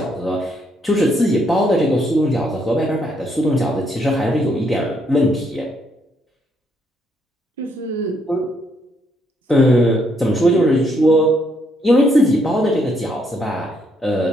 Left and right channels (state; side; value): normal; both; correlation 0.73